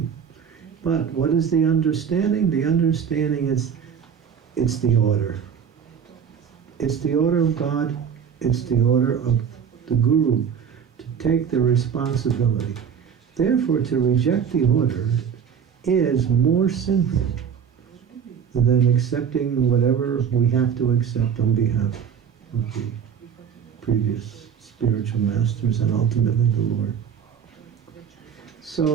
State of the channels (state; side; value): quieter; left; 7.4 dB